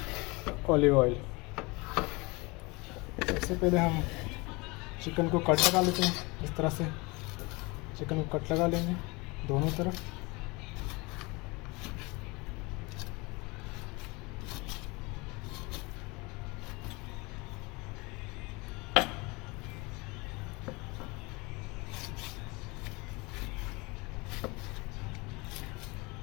ऑलिव ऑयल। सबसे पहले हम चिकन को कट लगा लेते हैं। इस तरह से चिकन को कट लगा लेंगे दोनों तरफ।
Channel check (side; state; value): right; quieter; 25.8 dB